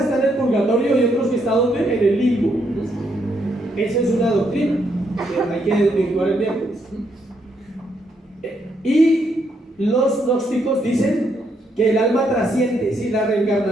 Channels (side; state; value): both; normal; correlation 0.75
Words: en el purgatorio y otros que están ¿dónde? En el limbo. Esa es una doctrina. Hay que desvirtuar el miércoles. Y los gnósticos dicen que el alma trasciende, ¿sí? La